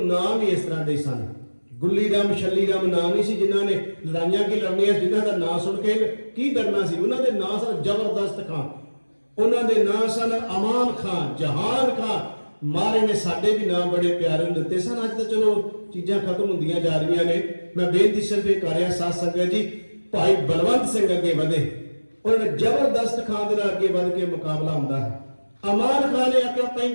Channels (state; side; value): inverted; both; correlation -1.00